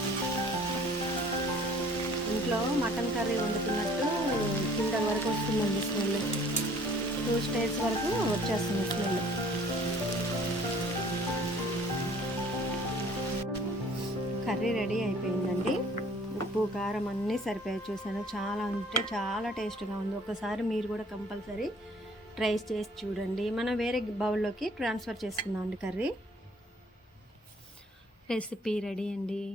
ఇంట్లో మటన్ కర్రీ వండుతున్నట్టు కింద వరకు వస్తుందండి స్మెల్. 2 స్టేజ్ వరకు వచ్చేస్తుంది స్మెల్. కర్రీ రెడీ అయిపోయిందండి. ఉప్పు కారం అన్నీ సరిపోయాయి. చూసాను, చాలా అంటే చాలా టేస్ట్గా ఉంది. ఒకసారి మీరు కూడా కంపల్సరీ ట్రై చేసి చూడండి. మనం వేరే బౌల్లోకి ట్రాన్స్ఫర్ చేసుకుందామండి. కర్రీ రెసిపీ రెడీ అండి.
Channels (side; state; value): both; normal; correlation 0.55